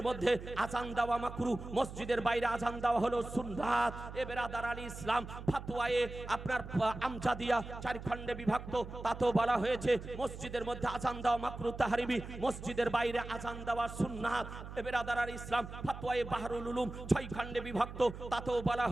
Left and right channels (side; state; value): right; noise; hum, 11 dB below the sound